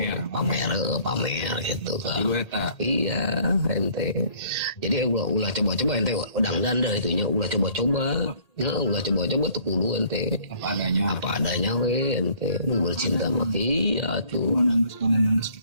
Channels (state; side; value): late; right; 1.8 ms